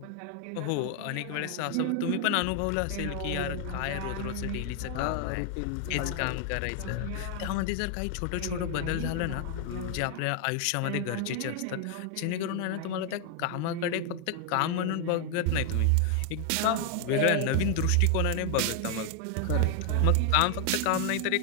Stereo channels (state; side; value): different; both; correlation 0.00